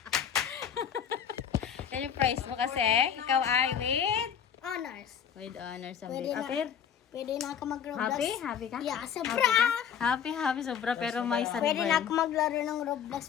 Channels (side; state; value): right; quieter; 8.2 dB